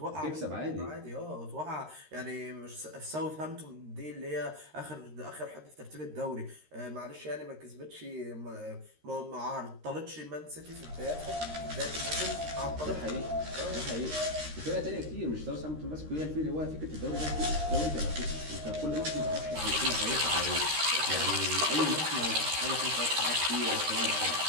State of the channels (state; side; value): late; left; 13 ms